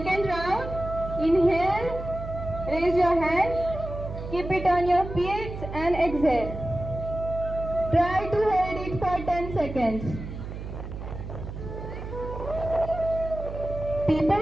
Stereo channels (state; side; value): noise; right; hum, 9 dB below the sound